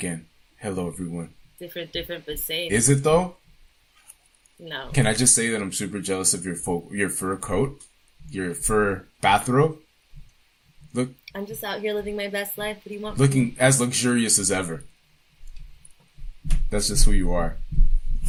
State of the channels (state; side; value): identical; both; correlation 1.00